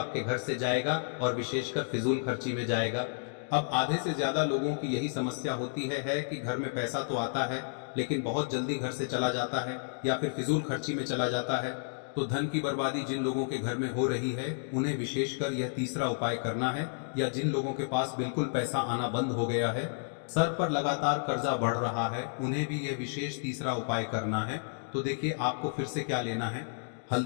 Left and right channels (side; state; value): right; silent; digital silence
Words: घर से जाएगा और विशेषकर फिजूल खर्ची में जाएगा। अब आधे से ज्यादा लोगों की यही समस्या होती है कि घर में पैसा तो आता है लेकिन बहुत जल्दी घर से चला जाता है या फिर फिजूल खर्ची में चला जाता है। तो धन की बर्बादी जिन लोगों के घर में हो रही है उन्हें विशेषकर यह तीसरा उपाय करना है, या जिन लोगों के पास बिल्कुल पैसा आना बंद हो गया है, सर पर लगातार कर्जा बढ़ रहा है, उन्हें भी यह विशेष तीसरा उपाय करना है। तो देखिए आपको फिर से क्या लेना है,